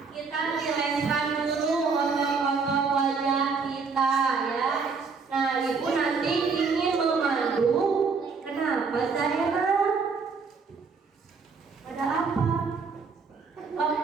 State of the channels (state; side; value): quieter; left; 5.0 dB